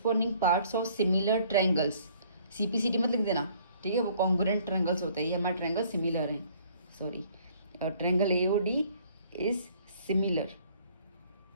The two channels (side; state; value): both; inverted; correlation -0.59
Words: parts of similar triangles, CPCT मत लिख देना, ठीक है, वो congruent triangles होते हैं, ये हमारे triangle similar हैं, sorry triangle AOD is similar,